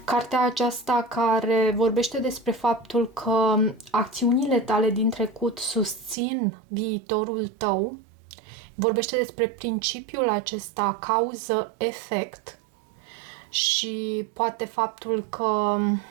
cartea aceasta care vorbește despre faptul că acțiunile tale din trecut susțin viitorul tău, vorbește despre principiul acesta cauză-efect și poate faptul că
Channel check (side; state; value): left; drops out; at 6.2 s